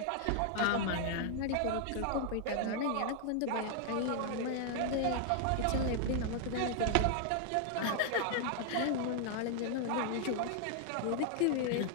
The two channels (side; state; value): both; different; correlation 0.00